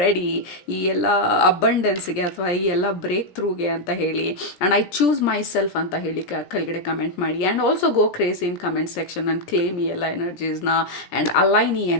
ready ಈ ಎಲ್ಲ ಅಬಂಡೆನ್ಸ್ಗೆ ಅಥವಾ ಈ ಎಲ್ಲ ಬ್ರೇಕ್ ಥ್ರೂಗೆ ಅಂತ ಹೇಳಿ. And I choose my self ಅಂತ ಹೇಳಿ ಕೆಳಗಡೆ ಕಮೆಂಟ್ ಮಾಡಿ. And also go crazy in comment section and claim ಈ ಎಲ್ಲ ಎನರ್ಜೀಸ್ನ ಆ್ಯಂಡ್ ಅಲೈನ್ ಈ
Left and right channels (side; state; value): right; late; 17 ms